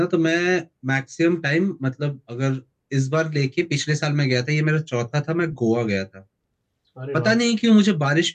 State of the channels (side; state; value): both; identical; correlation 1.00